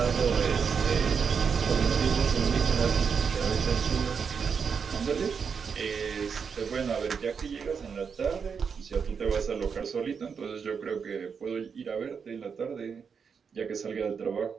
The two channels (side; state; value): left; quieter; 6.2 dB